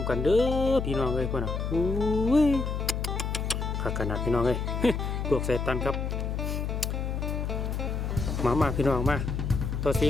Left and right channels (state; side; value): noise; left; hum, 2 dB below the sound